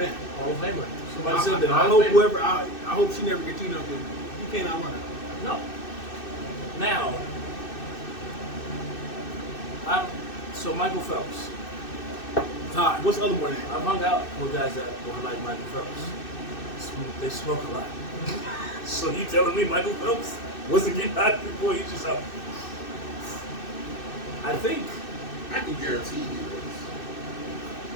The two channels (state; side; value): late; right; 2.6 ms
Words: Hall of Famer. Somebody I, said that. I Hall hope of Famer. whoever I hope she never gets up with. You can't outrun her. No. Now, so Michael Phelps. Hi, what's the other one? I've hung out with guys that were like Michael Phelps. They smoke a lot. So you telling me Michael Phelps wasn't getting hot before he just out? I think I can guarantee you